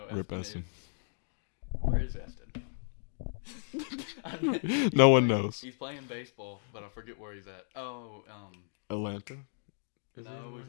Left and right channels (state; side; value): silent; right; digital silence